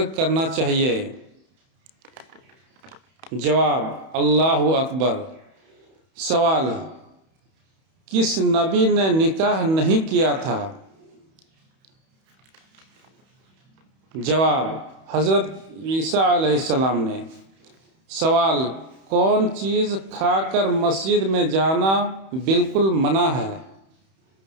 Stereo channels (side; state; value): left; late; 31 ms